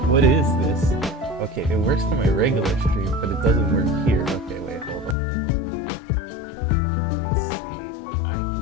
What is this? Okay, it works for my regular stream, but it doesn't work here. Okay, wait, hold up. Let me see what I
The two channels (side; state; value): right; drops out; at 5.2 s